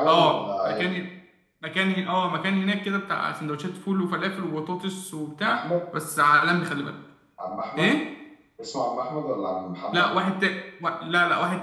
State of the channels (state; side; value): identical; both; correlation 1.00